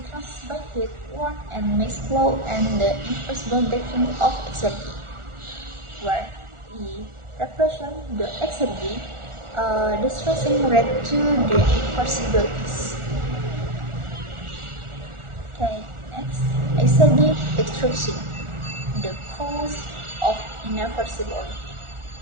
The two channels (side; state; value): left; late; 1.4 ms